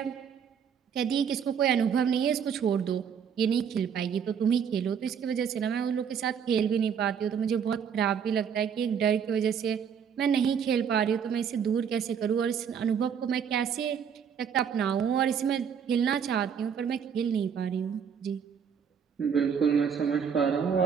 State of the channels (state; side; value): quieter; left; 7.4 dB